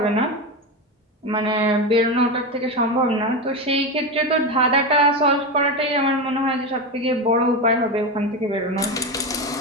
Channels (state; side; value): normal; both; correlation 0.17